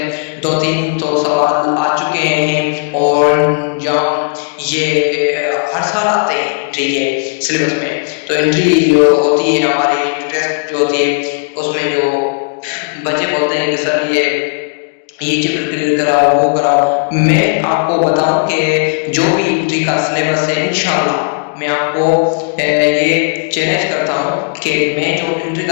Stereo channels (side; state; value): right; silent; 71 dB below the other